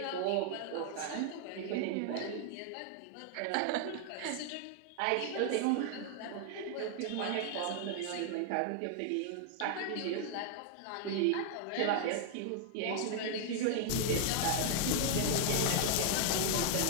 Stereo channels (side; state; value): both; different; correlation 0.00